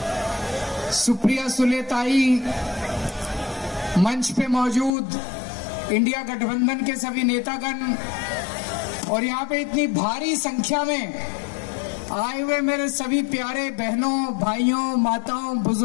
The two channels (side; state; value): right; drops out; at 4.9 s